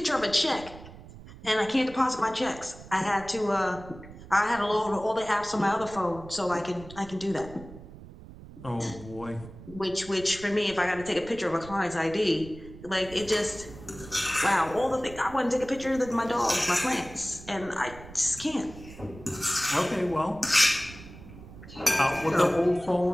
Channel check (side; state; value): right; noise; rumble, 17 dB below the sound